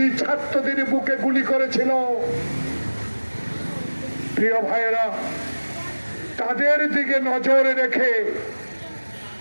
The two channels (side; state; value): both; inverted; correlation -1.00